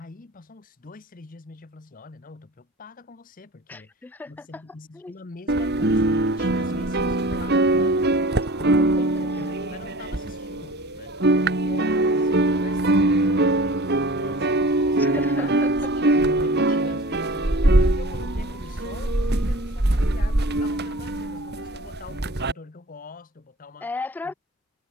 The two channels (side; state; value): both; normal; correlation 0.42